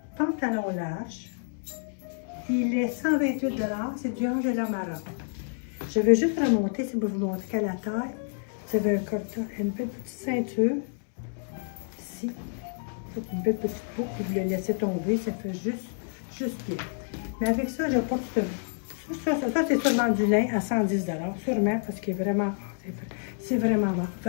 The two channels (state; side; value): silent; right; 59 dB below the other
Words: pantalon large. Il est 128 $. C'est du Angela Maroc. Je vais juste remonter, si vous montrer qu'à la taille, vous avez une petite ceinture. Ici. Une belle petite boucle, vous le laissez tomber, ça fait juste bien. Mais avec ça, je porte ça c'est sûrement du lin à 110 $, sûrement, parce qu'il est vraiment, c'est vraiment hot.